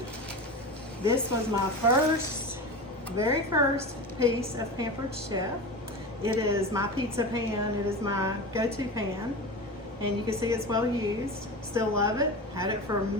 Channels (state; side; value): normal; both; correlation 0.27